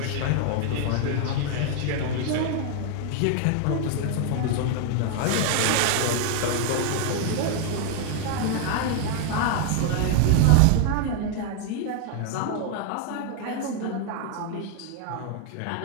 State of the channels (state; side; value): different; both; correlation 0.00